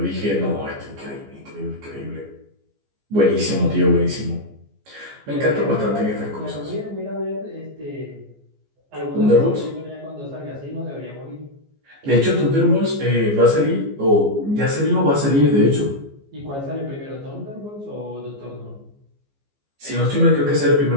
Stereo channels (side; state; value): left; late; 14 ms